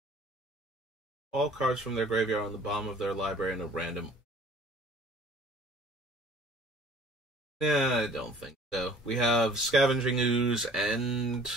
All cards from their graveyard on the bottom of their library in a random. Yeah, I don't think so. We have Scavenging Ooze and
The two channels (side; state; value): both; normal; correlation 0.52